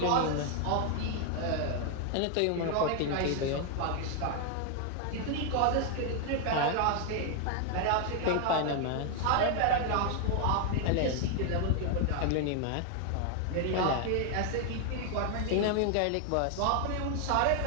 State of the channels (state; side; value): different; both; correlation 0.00